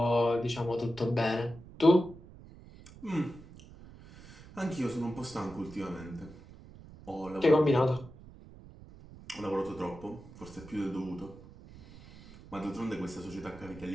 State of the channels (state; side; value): noise; right; rumble, 19 dB below the sound